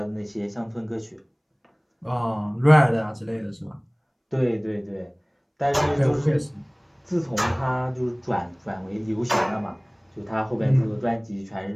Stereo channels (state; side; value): identical; both; correlation 1.00